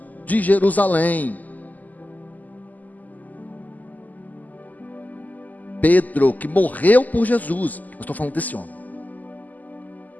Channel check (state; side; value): late; right; 0.081 ms